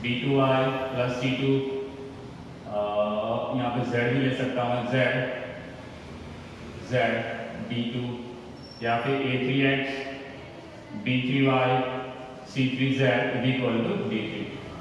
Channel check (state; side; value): identical; both; correlation 1.00